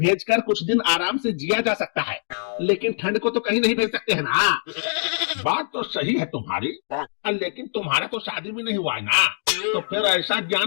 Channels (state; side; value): silent; right; digital silence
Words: कुछ दिन आराम से जिया जा सकता है, लेकिन ठंड को तो कहीं नहीं भेज सकते हैं ना। बात तो सही है तुम्हारी, लेकिन तुम्हारा तो शादी भी नहीं हुआ है ना, तो फिर ऐसा